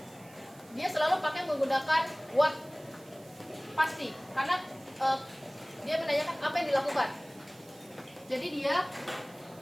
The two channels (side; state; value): right; noise; hiss, 24 dB below the sound